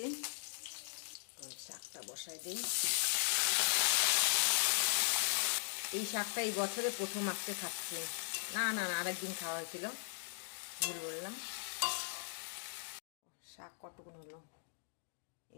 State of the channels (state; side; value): silent; right; digital silence